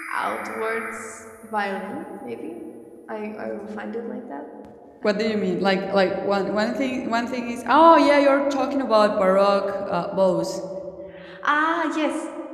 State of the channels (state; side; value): identical; both; correlation 1.00